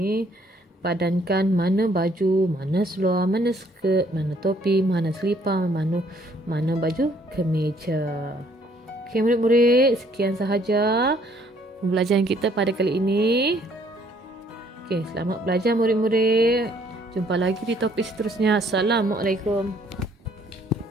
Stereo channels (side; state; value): both; normal; correlation 0.64